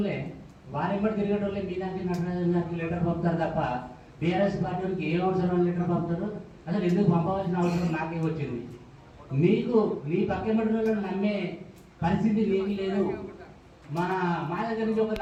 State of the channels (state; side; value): identical; both; correlation 1.00